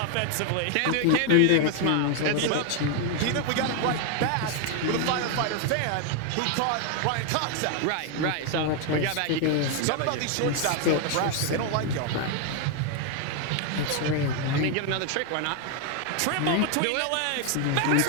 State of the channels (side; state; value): both; different; correlation 0.01